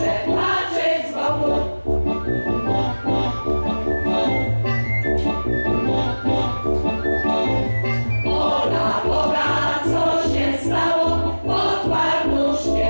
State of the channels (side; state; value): both; inverted; correlation -1.00